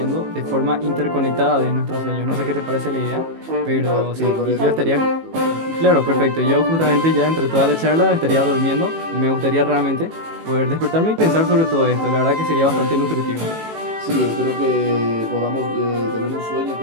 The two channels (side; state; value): left; late; 18 ms